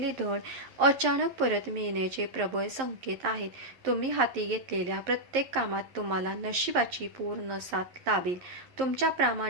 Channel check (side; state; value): left; late; 11 ms